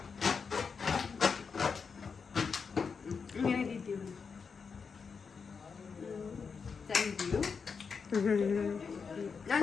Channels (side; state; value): right; quieter; 5.6 dB